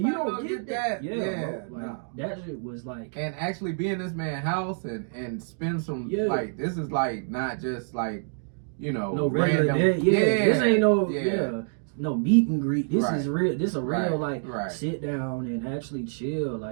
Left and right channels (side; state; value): left; silent; digital silence